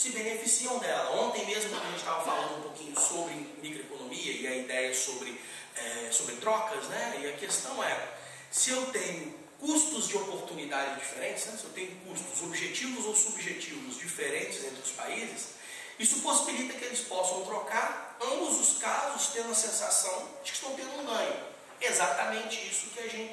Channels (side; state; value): both; identical; correlation 1.00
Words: beneficiam dela. Ontem mesmo, quando a gente estava falando um pouquinho sobre microeconomia e a ideia sobre trocas, né? E a questão é, se eu tenho custos de oportunidade diferentes, né? Se eu tenho custos objetivos ou subjetivos diferentes entre os países, isso possibilita que eles possam trocar, ambos os casos tendo a sensação de que estão tendo um ganho. Exatamente isso